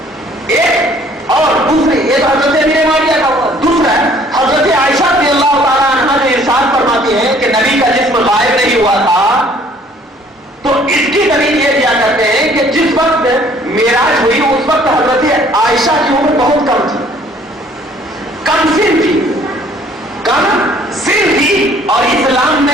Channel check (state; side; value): normal; both; correlation 0.58